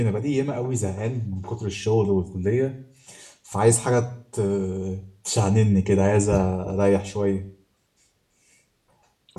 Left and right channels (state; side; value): identical; both; correlation 1.00